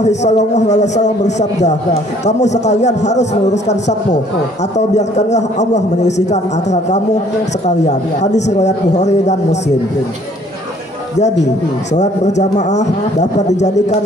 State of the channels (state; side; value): normal; both; correlation 0.59